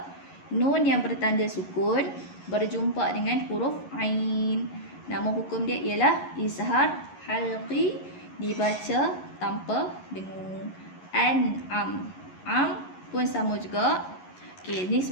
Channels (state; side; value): late; right; 11 ms